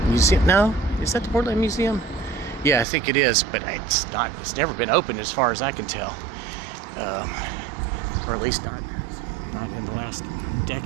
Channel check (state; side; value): drops out; left; at 2.9 s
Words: Museum. No, is that the Portland Museum? Yeah, I think it is, but it's not. It's never been opened as far as I can tell, or at least not in the last